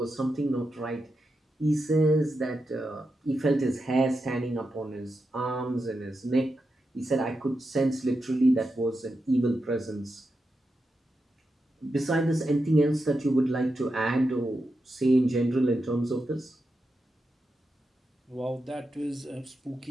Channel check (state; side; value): normal; both; correlation 0.88